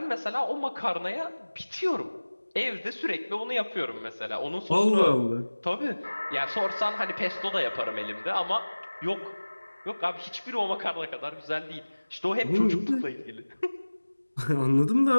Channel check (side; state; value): both; inverted; correlation -1.00